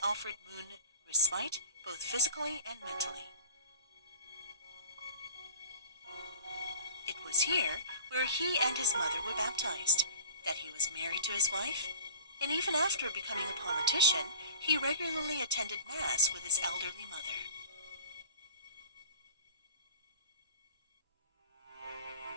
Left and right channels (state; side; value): inverted; both; correlation -0.43